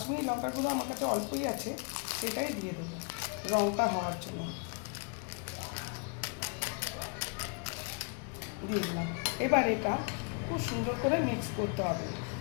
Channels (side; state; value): right; quieter; 35.8 dB